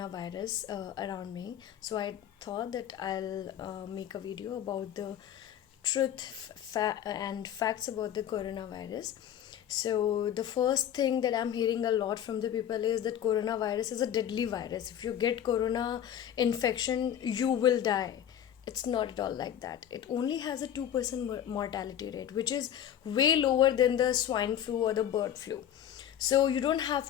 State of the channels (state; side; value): quieter; right; 10.2 dB